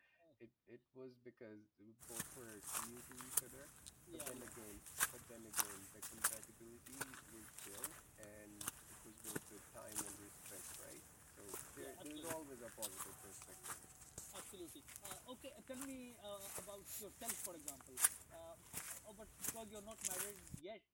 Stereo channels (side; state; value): both; identical; correlation 1.00